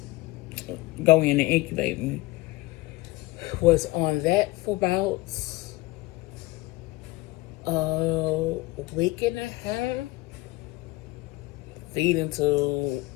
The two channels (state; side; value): quieter; right; 20.0 dB